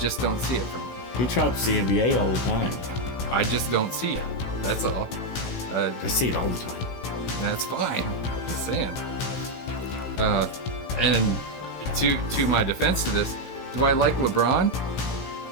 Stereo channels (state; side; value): late; right; 16 ms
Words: don't see it from him. He trumps the NBA all the time. I just don't see it. That's all. I see it all the time. That's fine. Just saying. And to my defense to this, do I like LeBron?